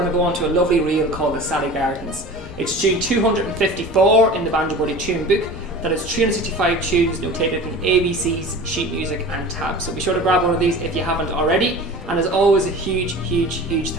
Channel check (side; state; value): both; normal; correlation 0.38